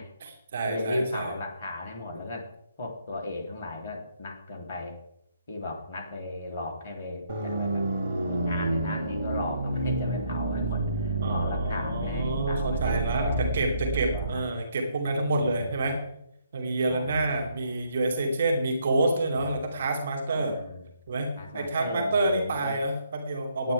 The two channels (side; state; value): both; inverted; correlation -0.71